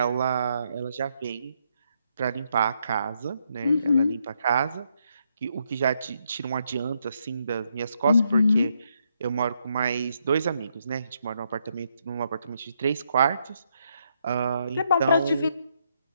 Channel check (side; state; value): both; inverted; correlation -0.77